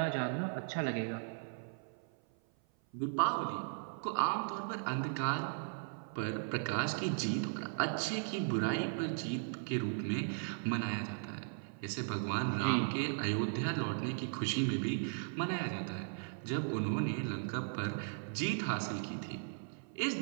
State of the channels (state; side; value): silent; left; 53 dB below the other